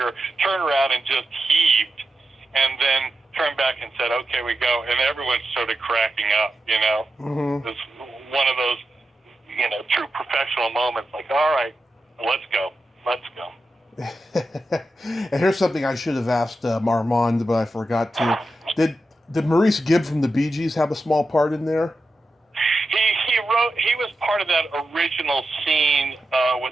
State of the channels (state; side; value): normal; both; correlation 0.90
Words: turned around, and just heaved, and then turned back and said, okay, we go. And everyone started cracking up, Mm-hmm. It was one of those, true professional moments, like, all right, let's go. And here's something I should have asked Armand, but I forgot to. Did Maurice Gibb from the Bee Gees have a small part in there? He was part of that original scene